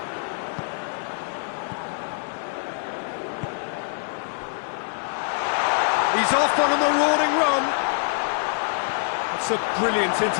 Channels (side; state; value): right; silent; 62 dB below the other